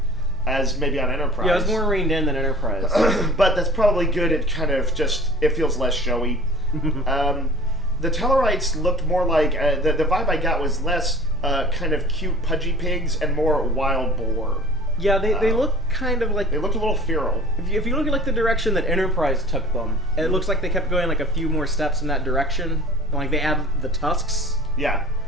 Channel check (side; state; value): both; normal; correlation 0.44